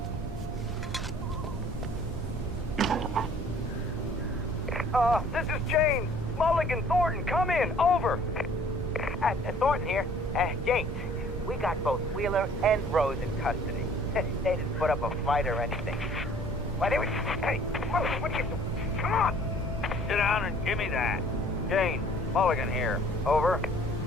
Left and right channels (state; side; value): noise; right; rumble, 9 dB below the sound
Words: This is James. Mulligan, Thornton, come in. Over. Thornton here. James, we got both Wheeler and Rose in custody. They didn't put up a fight or anything. Why, they were... Hey, what are you doing? Come on. Sit down and give me that. James, Mulligan here. Over.